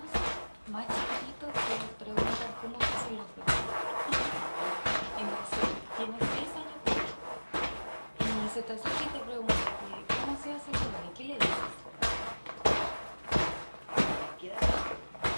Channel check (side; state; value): both; inverted; correlation -1.00